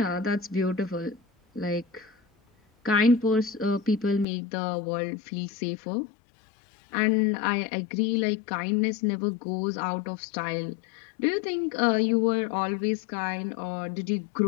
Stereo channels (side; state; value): right; drops out; at 4.2 s